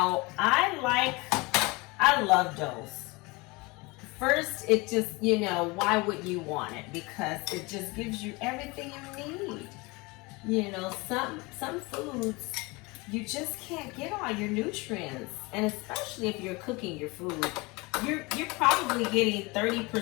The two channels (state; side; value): quieter; right; 25.1 dB